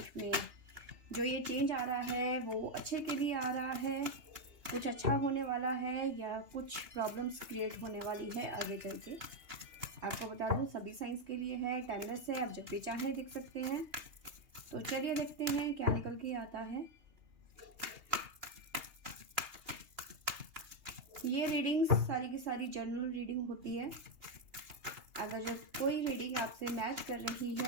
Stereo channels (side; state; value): left; late; 2.8 ms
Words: में। जो ये चेंज आ रहा है वो अच्छे के लिए आ रहा है, कुछ अच्छा होने वाला है या कुछ प्रॉब्लम्स क्रिएट होने वाली है आगे चल के। आपको बता दूँ सभी साइंस के लिए है, टाइमलेस है, आप जब भी चाहें देख सकते हैं। तो चलिए देखते हैं क्या निकल के आता है। ये रीडिंग्स सारी की सारी जनरल रीडिंग होती है। अगर जो कोई रीडिंग आपसे मैच कर रही